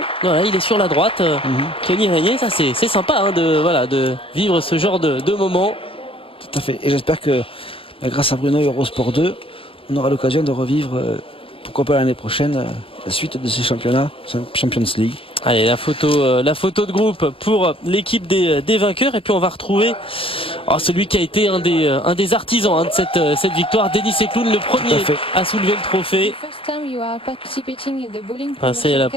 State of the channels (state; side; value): late; right; 0.26 ms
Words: Voilà, il est sur la droite. Tony Régnier, ça c'est sympa de vivre ce genre de moment. Tout à fait. Et j'espère que grâce à Bruno et Eurosport 2, on aura l'occasion de revivre, pourquoi pas l'année prochaine, la suite de ces championnats, Champions League. Allez, la photo de groupe pour l'équipe des vainqueurs, et puis on va retrouver celui qui a été un des artisans de cette victoire, Denis Sencloud, le premier à soulever le trophée. C'est la